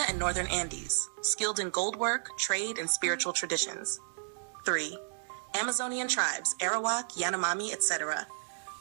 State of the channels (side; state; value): left; silent; digital silence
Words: and northern Andes, skilled in gold work, trade, and spiritual traditions. 3. Amazonian tribes, Arawak, Yanomami, etc.,